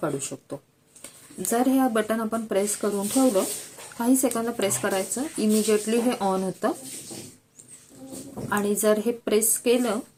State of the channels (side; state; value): both; identical; correlation 1.00